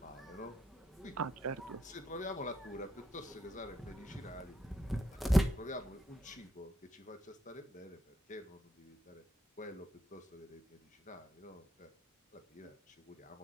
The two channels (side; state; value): both; normal; correlation 0.78